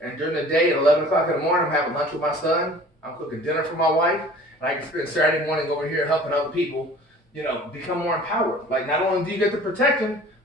And during the day at 11 o'clock in the morning, I'm having lunch with my son. I'm cooking dinner for my wife. And I can spend Saturday morning over here helping other people, you know, become more empowered. Like, not only do you get the protection,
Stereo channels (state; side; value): normal; both; correlation 0.46